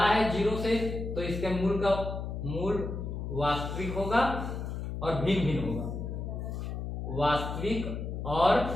है 0 से तो इसके मूल वास्तविक होगा और भिन्न भिन्न होगा, वास्तविक और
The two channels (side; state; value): left; noise; hum, 5 dB below the sound